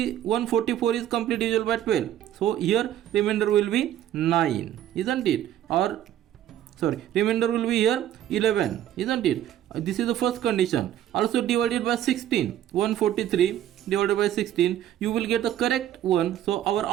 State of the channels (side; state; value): left; quieter; 11.6 dB